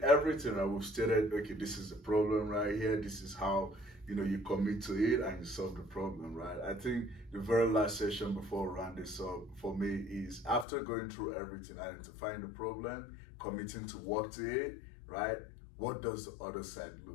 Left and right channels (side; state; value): right; drops out; at 10.7 s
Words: everything, I we've stated, okay, this is the problem right here. This is how, you commit to it and you solve the problem, right? I think the very last session before we round this up for me is after going through everything, identifying the problem, committing to work to it, right? What does the other side